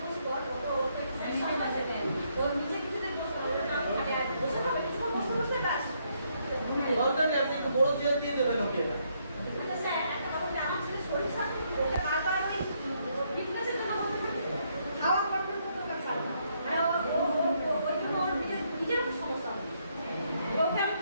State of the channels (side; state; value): both; inverted; correlation -0.73